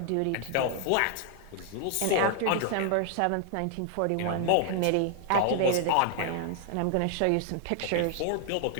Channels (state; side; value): different; both; correlation 0.00